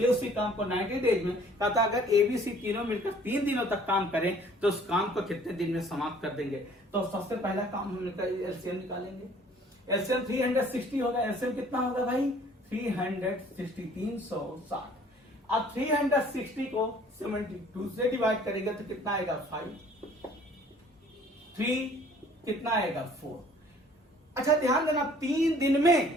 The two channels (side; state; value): both; normal; correlation 0.55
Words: ए उसी काम को 90 डेज में। कहता अगर ए बी सी तीनों मिलकर 3 दिनों तक काम करें तो उस काम को कितने दिन में समाप्त कर देंगे। तो सबसे पहला काम हम एलसीएम निकालेंगे। एलसीएम 360 होगा, एलसीएम कितना होगा भाई 360 360। अब 360 को 72 से डिवाइड करेंगे तो कितना आएगा 5, 3 कितना आएगा 4। अच्छा ध्यान देना, 3 दिन